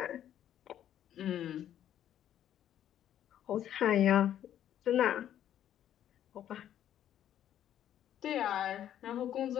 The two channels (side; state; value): right; quieter; 10.9 dB